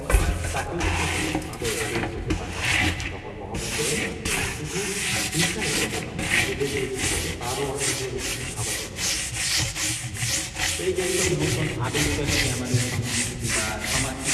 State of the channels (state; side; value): identical; both; correlation 1.00